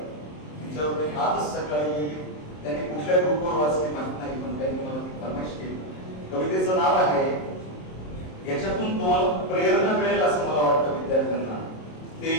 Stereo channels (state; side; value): late; right; 27 ms